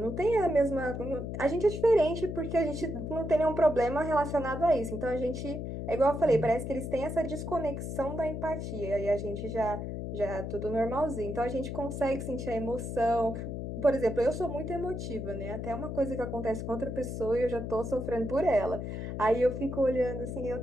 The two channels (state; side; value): noise; left; hum, 5 dB below the sound